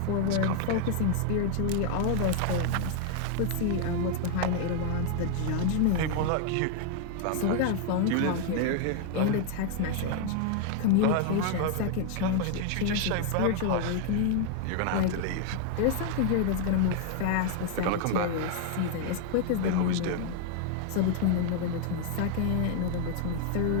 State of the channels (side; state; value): both; different; correlation 0.00